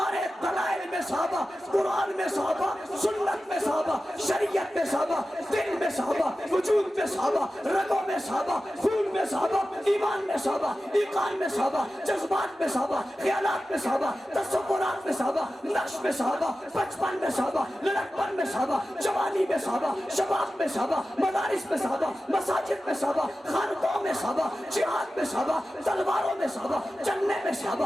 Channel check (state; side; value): normal; both; correlation 0.94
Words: دلائل میں صحابہ، قرآن میں صحابہ، سنت میں صحابہ، شریعت میں صحابہ، دل میں صحابہ، وجود میں صحابہ، رگوں میں صحابہ، خون میں صحابہ، ایمان میں صحابہ، ایقان میں صحابہ، جذبات میں صحابہ، خیالات میں صحابہ، تصورات میں صحابہ، نقش میں صحابہ، بچپن میں صحابہ، لڑکپن میں صحابہ، جوانی میں صحابہ، شباب میں صحابہ، مدارس میں صحابہ، مساجد میں صحابہ، خانقاہوں میں صحابہ، جہاد میں صحابہ، تلواروں میں صحابہ، چلنے میں